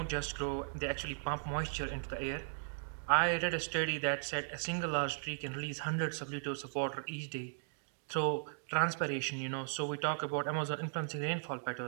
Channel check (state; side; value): silent; left; digital silence